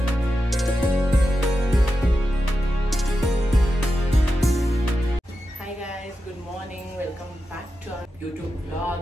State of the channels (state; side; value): normal; both; correlation 0.90